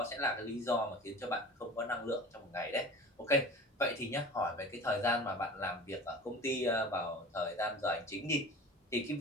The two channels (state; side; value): normal; both; correlation 0.38